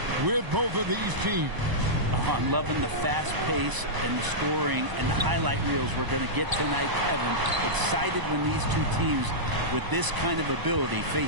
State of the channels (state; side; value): late; left; 1.0 ms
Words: with both of these teams. I'm loving the fast pace and the scoring and the highlight reels we're going to get tonight, Kevin. Excited when these two teams with this kind of ability